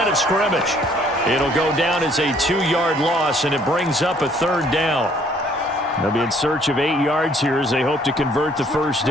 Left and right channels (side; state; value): both; normal; correlation 0.62